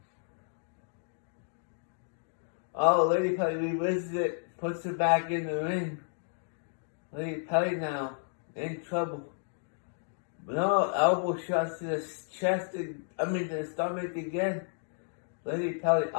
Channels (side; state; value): right; silent; digital silence